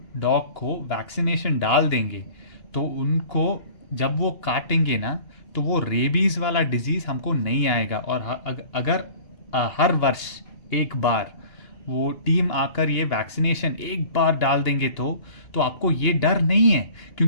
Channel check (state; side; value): late; right; 2.8 ms